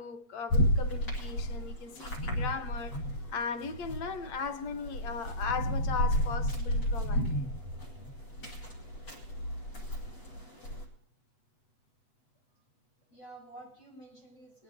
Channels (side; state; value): right; late; 8.1 ms